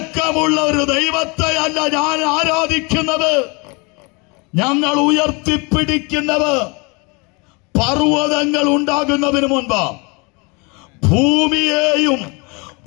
ഒരു ദൈവത്തെ അല്ല ഞാൻ ആരാധിക്കുന്നത്. ഞങ്ങൾ ഉയർത്തിപ്പിടിക്കുന്നത് പർവ്വതങ്ങൾ ഉണ്ടാകുന്നതിന് മുൻപ് ഭൂമിയെയും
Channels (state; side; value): quieter; right; 29.6 dB